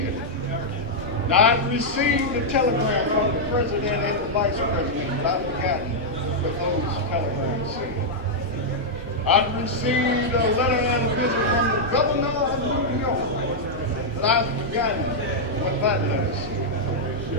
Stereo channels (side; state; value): both; normal; correlation -0.05